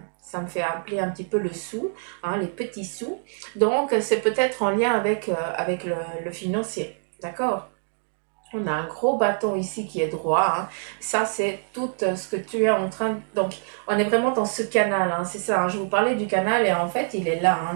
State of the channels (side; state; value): left; silent; 62 dB below the other